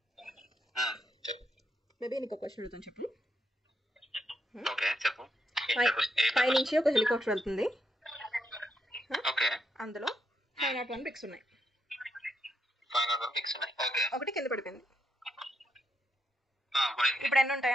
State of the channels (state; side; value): normal; both; correlation 0.80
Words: ఆ, చెప్పు. బేబీ నీకు ఒక క్వశ్చన్ అడుగుతాను చెప్పు. ఓకే చెప్పు. పై నుంచి ఒక హెలికాప్టర్ వెళ్తుంది. ఓకే అందులో 501 బ్రిక్స్ ఉన్నాయి. 500 పిక్స్ ఉన్నాయి. ఓకే ఒకటి కింద పడిపోయింది. పోయింది. ఇప్పుడు ఎన్ని